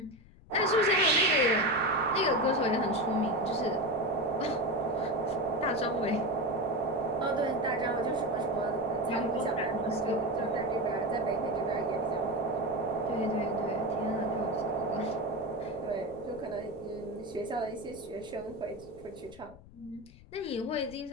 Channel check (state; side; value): noise; left; rumble, 21 dB below the sound